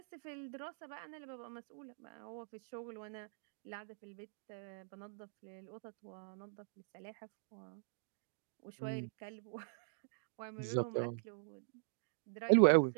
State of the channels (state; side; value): silent; left; digital silence